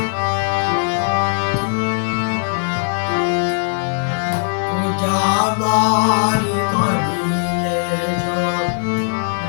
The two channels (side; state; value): right; silent; digital silence